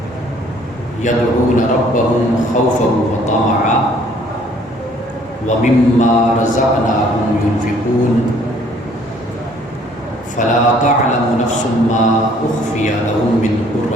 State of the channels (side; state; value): both; normal; correlation 0.59